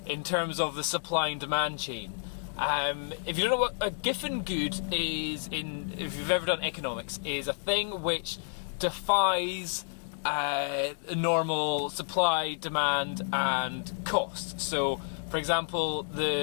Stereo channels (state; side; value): silent; right; digital silence